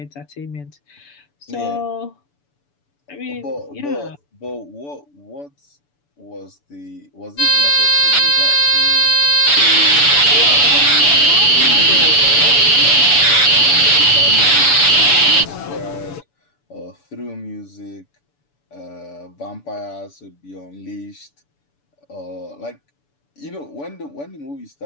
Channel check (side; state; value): right; late; 6.9 ms